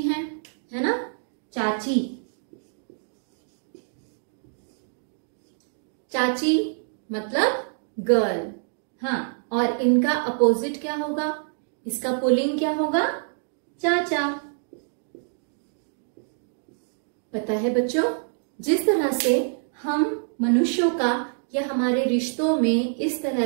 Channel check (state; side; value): silent; left; digital silence